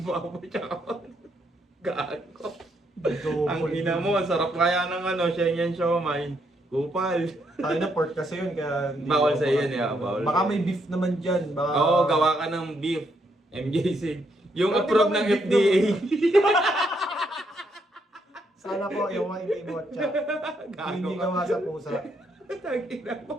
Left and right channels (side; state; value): both; normal; correlation 0.75